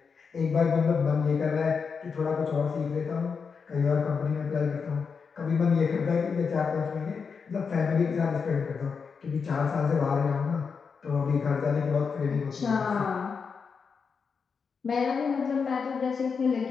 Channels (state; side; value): quieter; right; 5.6 dB